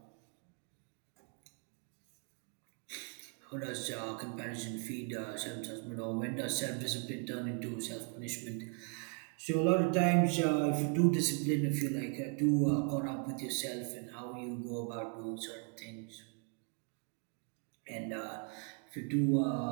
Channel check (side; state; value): left; quieter; 39.1 dB